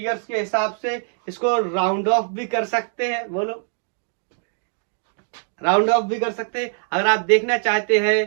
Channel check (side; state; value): left; silent; 61 dB below the other